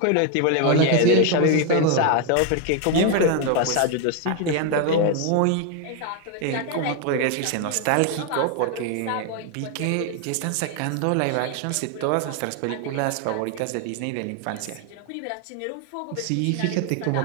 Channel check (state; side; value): different; both; correlation 0.01